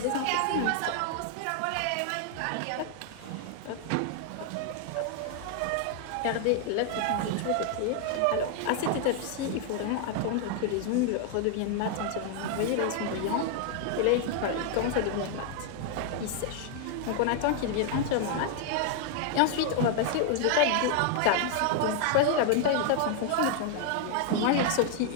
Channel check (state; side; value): different; both; correlation 0.00